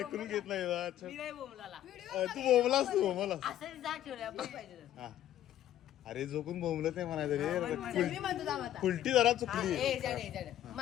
घेत नाही. तू बोंबलास. तू बोंबलास. अरे जो कोण बोंबलत नाही म्हणायचं रे. उलटी जरा चुकली.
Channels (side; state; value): right; quieter; 12.1 dB